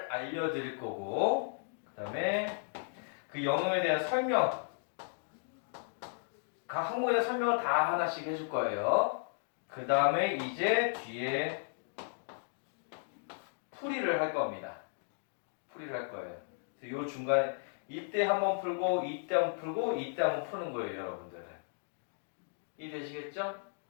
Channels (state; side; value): silent; right; digital silence